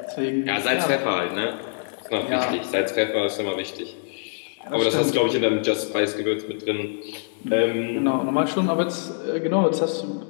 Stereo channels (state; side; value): silent; right; digital silence